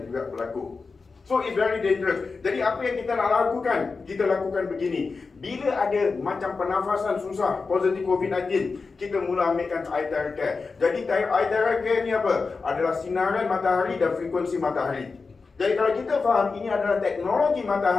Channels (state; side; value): quieter; right; 4.4 dB